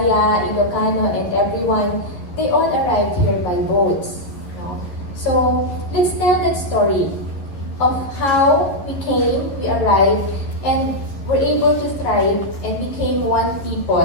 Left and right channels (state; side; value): late; right; 11 ms